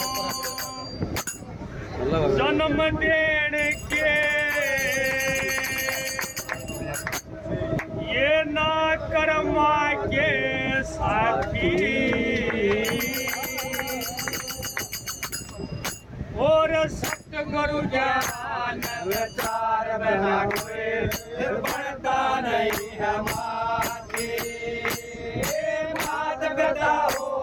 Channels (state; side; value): identical; both; correlation 1.00